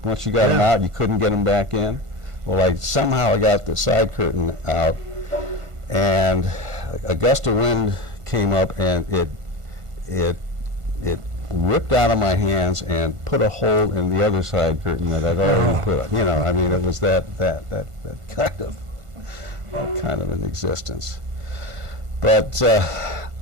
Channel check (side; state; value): left; late; 1.5 ms